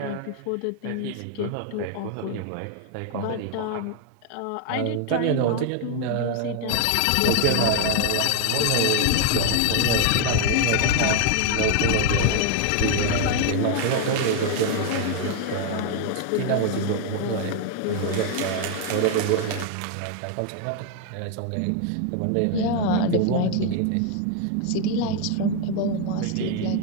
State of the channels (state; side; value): different; both; correlation 0.00